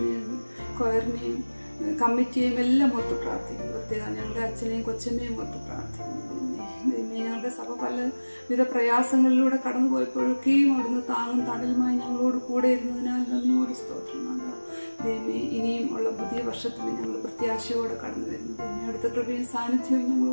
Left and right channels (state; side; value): inverted; both; correlation -1.00